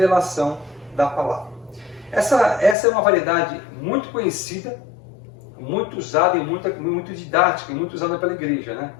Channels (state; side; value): drops out; right; at 2.8 s